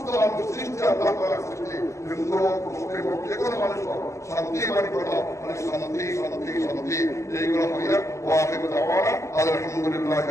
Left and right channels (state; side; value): late; right; 0.14 ms